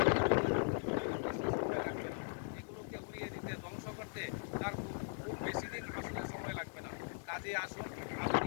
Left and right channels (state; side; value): silent; right; digital silence